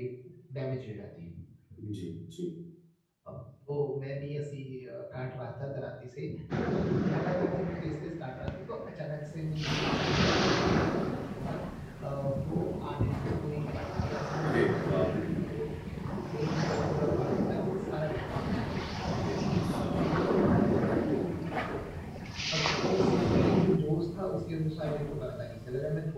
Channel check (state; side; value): identical; both; correlation 1.00